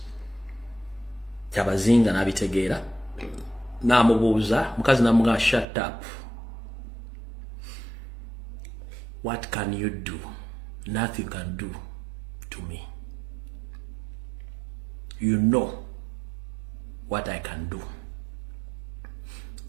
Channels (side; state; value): left; drops out; at 5.7 s